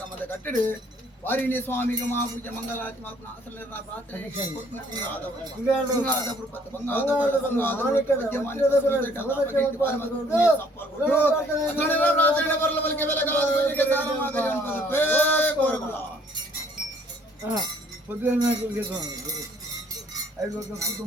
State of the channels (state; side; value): normal; both; correlation 0.61